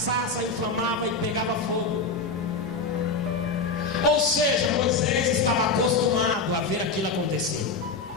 inflamava e pegava fogo. Ou seja, Moisés estava acostumado a ver aquilo acontecer.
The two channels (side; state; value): right; quieter; 4.1 dB